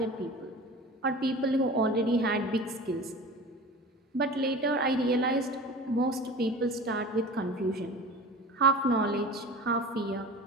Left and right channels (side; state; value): both; normal; correlation 0.36